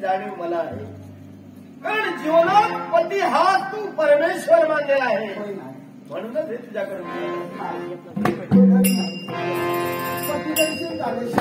जाणीव मला आहे. कारण जीवनात पती हा तू परमेश्वर मानलेला आहे, म्हणूनच हे तुझ्याकडे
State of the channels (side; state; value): both; identical; correlation 1.00